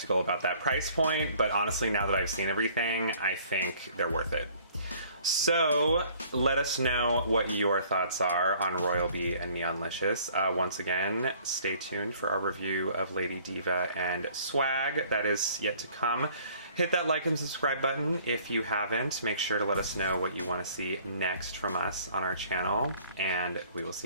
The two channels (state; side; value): inverted; both; correlation -0.56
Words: about that price point, but honestly, now that I've seen everything, I think they're worth it. So let us know what your thoughts are on Royal Bee and Neonlicious. Once again, stay tuned for our review of Lady Diva and Swag. That is yet to come. Hit that like and subscribe button if you haven't. Make sure to let us know what you want to see next from us on our channel, and we will